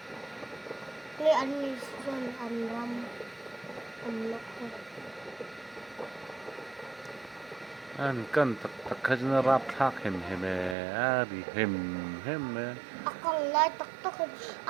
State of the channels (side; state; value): left; drops out; at 10.8 s